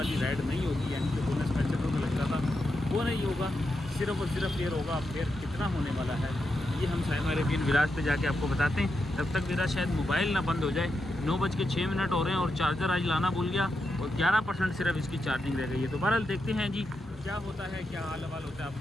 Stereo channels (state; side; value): normal; both; correlation 0.86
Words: राइड नहीं होगी, यानी कि बोनस 65 रुपये लगता था वो नहीं होगा, सिर्फ और सिर्फ फेयर होगा। फेयर कितना होने वाला है ये हम साइमा अरेबियन विलाज पे जाके आपको बताते हैं। तब तक मेरा शायद मोबाइल ना बंद हो जाए। 9:06 हो रहे हैं और चार्जर आज लाना भूल गया, और 11% सिर्फ इसकी चार्जिंग रह गई है। तो बहरहाल देखते हैं जी क्या होता है, क्या हाल हवाल होता है आप